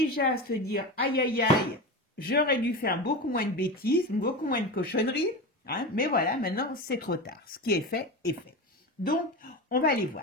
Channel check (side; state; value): both; normal; correlation 0.23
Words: se dire aïe aïe aïe, j'aurais dû faire beaucoup moins de bêtises, beaucoup moins de cochonneries, hein, mais voilà, maintenant c'est trop tard. Ce qui est fait est fait. Donc, on va aller